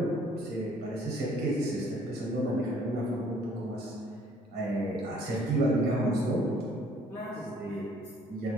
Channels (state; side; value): normal; both; correlation 0.59